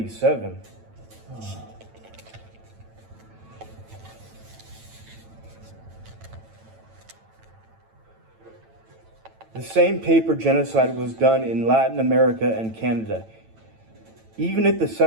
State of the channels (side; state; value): left; late; 9.0 ms